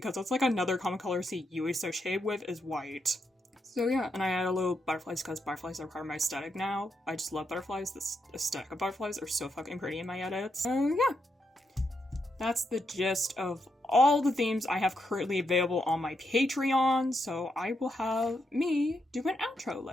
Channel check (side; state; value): both; normal; correlation 0.82